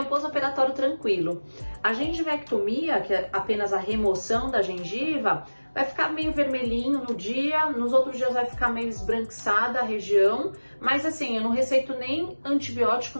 um pós-operatório tranquilo. A gengivectomia, que é apenas a remoção da gengiva, vai ficar meio vermelhinho no dia, nos outros dias vai ficar meio esbranquiçada a região, mas assim, eu não receito nem antibiótico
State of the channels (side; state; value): both; inverted; correlation -1.00